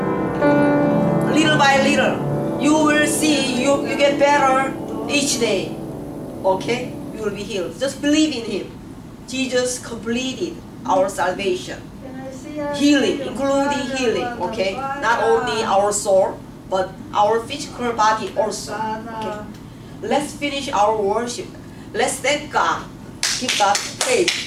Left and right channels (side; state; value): both; identical; correlation 1.00